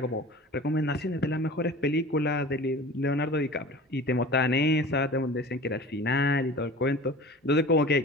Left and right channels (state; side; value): normal; both; correlation 0.39